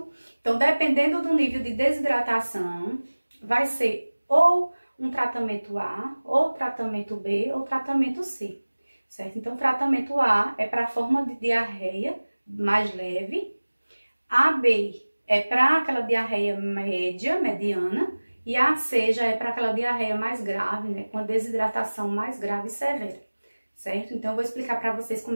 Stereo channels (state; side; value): inverted; both; correlation -1.00